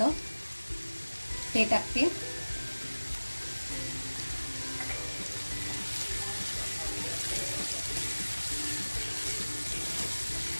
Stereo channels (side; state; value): both; inverted; correlation -1.00